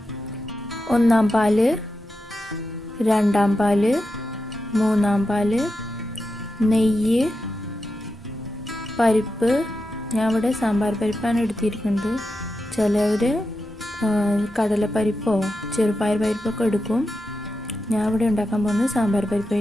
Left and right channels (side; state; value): both; normal; correlation 0.89